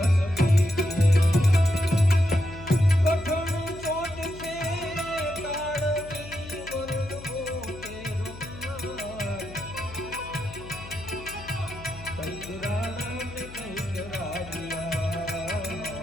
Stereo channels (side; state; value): left; noise; hum, 15 dB below the sound